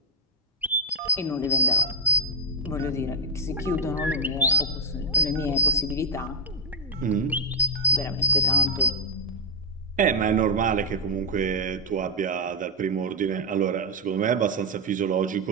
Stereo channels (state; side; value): normal; both; correlation -0.04